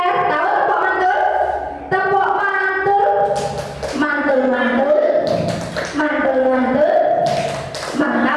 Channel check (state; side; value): identical; both; correlation 1.00